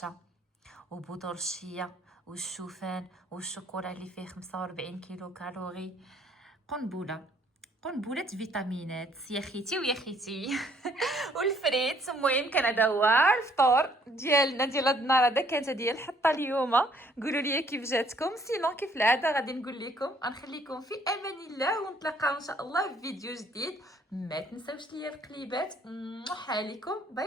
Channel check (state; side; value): normal; both; correlation 0.63